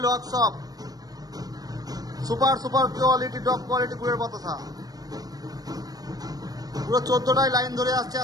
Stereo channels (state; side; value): late; left; 0.18 ms